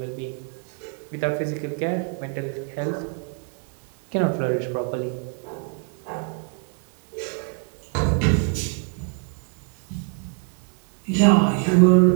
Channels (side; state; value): left; quieter; 39.0 dB